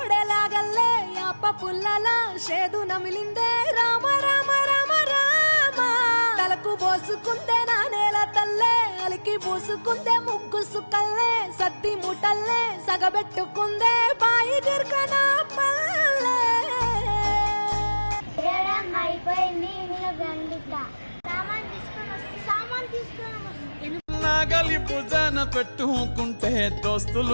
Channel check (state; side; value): inverted; both; correlation -1.00